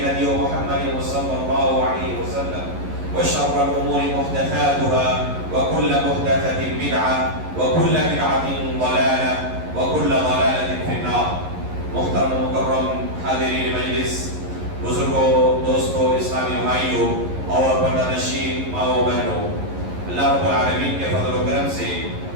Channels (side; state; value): left; late; 11 ms